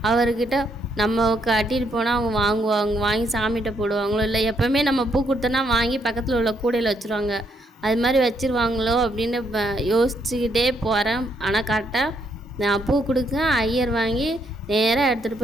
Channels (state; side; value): normal; both; correlation 0.74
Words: அவர்கிட்ட நம்ம கட்டிட்டு போனால் அவங்க வாங்கி சாமிகிட்ட போடுவாங்களோ இல்லை எப்போவுமே நம்ம பூ கொடுத்தோன்னா வாங்கி பக்கத்தில் உள்ள கூடையில் வச்சுருவாங்க, அது மாதிரி வச்சுருவாங்களோ அப்படின்னு யோசிச்சுக்கிட்டே போகிறேன். ஆனால் கரெக்டாக நான் பூ கொடுக்கேன். ஐயர் வாங்கி நேராக எடுத்துகிட்டு